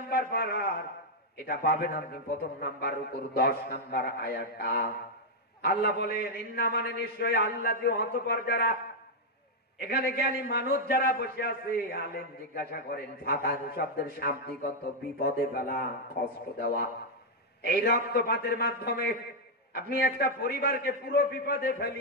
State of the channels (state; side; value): normal; both; correlation -0.02